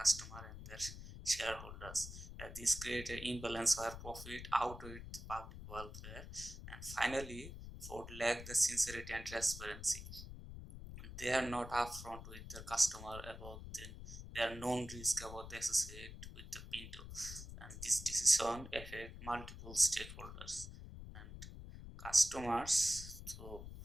and their shareholders. This creates an imbalance where profit outweighs the public welfare. And finally, Ford lack the sincerity and transparency. They are not upfront with their customer about their known risk about the associate with the Pinto, and this decision affect multiple stakeholders and customers. So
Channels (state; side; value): noise; left; rumble, 11 dB below the sound